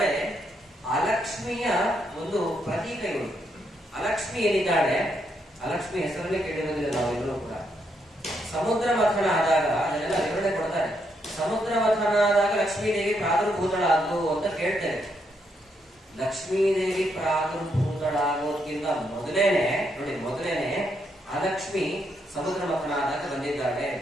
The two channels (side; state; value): both; normal; correlation 0.77